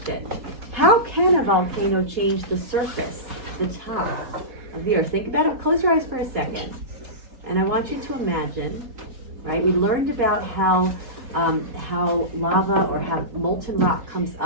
How can a volcano change the surface, the top of the Earth? Think about it. Close your eyes for a second. And I want you to imagine, right? We learned about how lava or how molten rock comes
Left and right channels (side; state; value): left; late; 4.2 ms